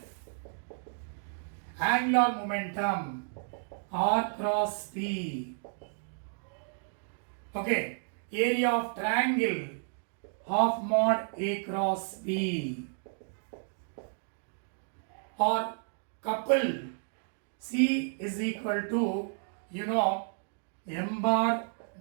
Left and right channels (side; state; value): left; silent; 56 dB below the other